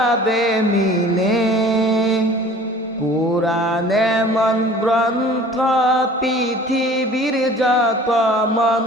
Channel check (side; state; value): both; normal; correlation 0.47